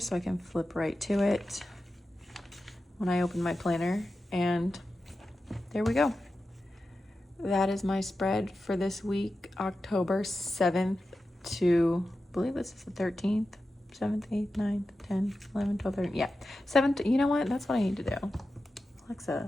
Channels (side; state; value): both; normal; correlation 0.92